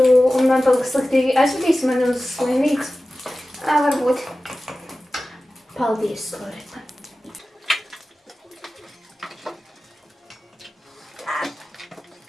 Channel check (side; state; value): both; normal; correlation 0.96